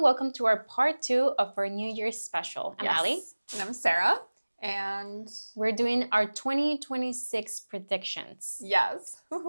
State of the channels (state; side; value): inverted; both; correlation -1.00